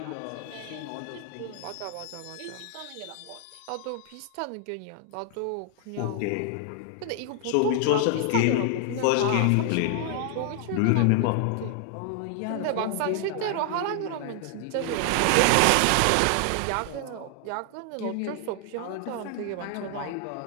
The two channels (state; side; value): different; both; correlation 0.00